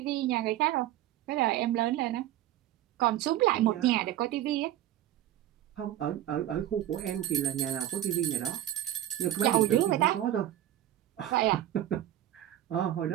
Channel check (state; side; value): quieter; left; 13.0 dB